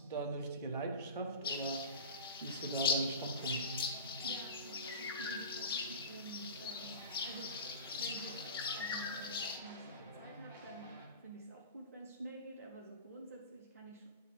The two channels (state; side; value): inverted; both; correlation -0.31